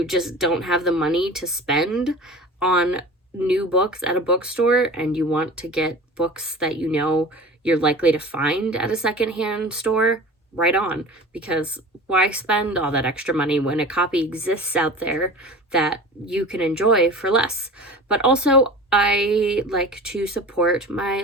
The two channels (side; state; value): both; normal; correlation 0.37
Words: just don't have the money to spend on new books at a bookstore and you want to get books that you know you're likely to find at a secondhand store, right on, because why spend all that extra money when a copy exists out there that you can enjoy for less? But also, I like to support my